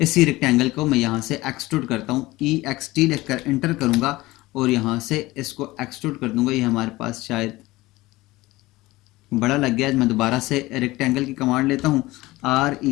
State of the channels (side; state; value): right; quieter; 19.3 dB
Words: रेक्टेंगल को मैं यहाँ से एक्सट्रूड करता हूँ। EXT लिखकर एंटर करूँगा और यहाँ से इसको एक्सट्रूड कर दूंगा। ये हमारे पास शायद बड़ा लग गया है। मैं दोबारा से रेक्टेंगल की कमांड लेता हूँ,